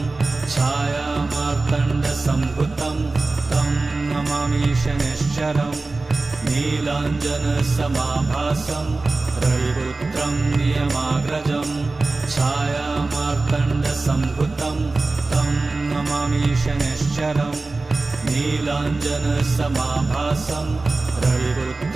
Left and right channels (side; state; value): left; quieter; 3.4 dB